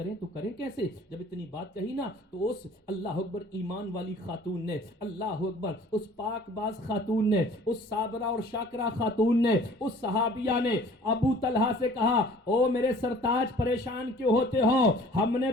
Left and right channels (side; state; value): both; normal; correlation 0.51